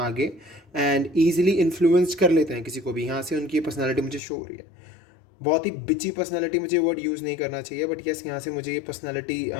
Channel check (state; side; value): drops out; right; at 4.2 s